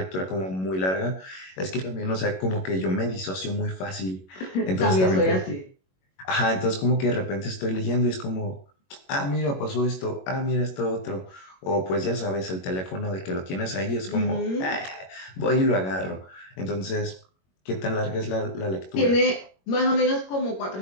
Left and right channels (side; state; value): right; late; 21 ms